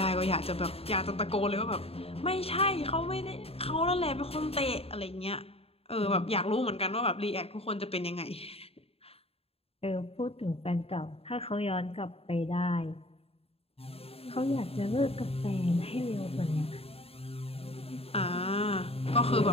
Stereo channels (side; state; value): right; late; 0.28 ms